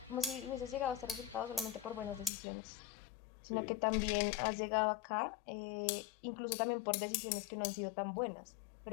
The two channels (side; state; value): right; drops out; at 2.3 s